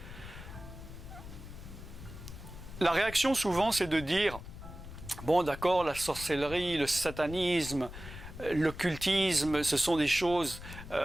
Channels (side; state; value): left; noise; rumble, 13 dB below the sound